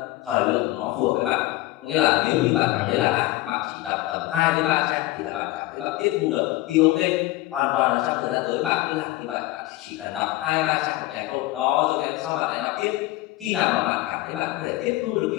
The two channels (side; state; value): right; quieter; 18.0 dB